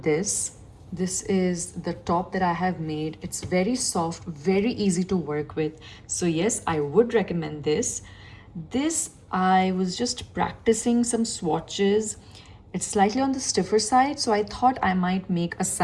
this. This is the top that I have made. It's very soft, very easy to work with. So yes, I would recommend this. This, I was just practicing some swatches. It's slightly on the stiffer side, so I thought I might make a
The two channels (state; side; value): identical; both; correlation 1.00